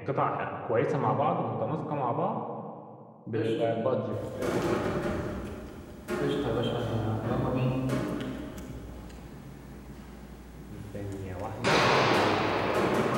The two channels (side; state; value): both; identical; correlation 1.00